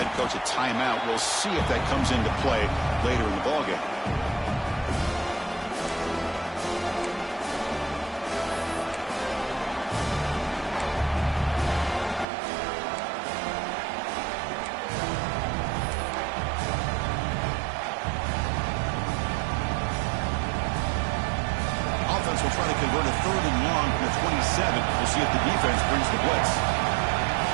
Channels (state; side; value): drops out; left; at 12.2 s